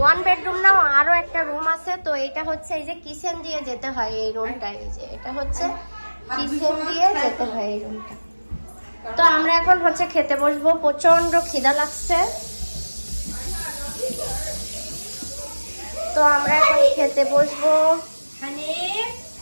1 বেডরুম না, আরো একটা রুম আছে। তো এটা হচ্ছে এই যে কিচেন দিয়ে যেতে হয় এই রুমটা, এই যে এটা হচ্ছে কিচেন দিয়ে যেতে হয় এই রুমটা। তো আমরা এখন হচ্ছে খেতে বসবো, প্রচন্ড খিদা লাগছে। তো আমরা এখন খেতে বসবো।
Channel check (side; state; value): both; inverted; correlation -1.00